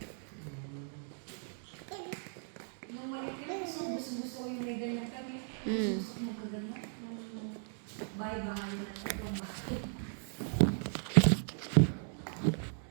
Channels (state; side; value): silent; left; 53 dB below the other